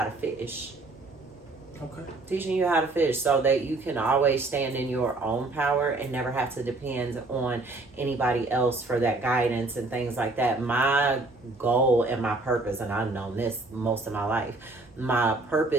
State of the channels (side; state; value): left; quieter; 3.1 dB